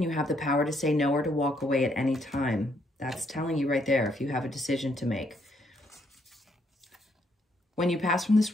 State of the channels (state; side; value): normal; both; correlation 0.72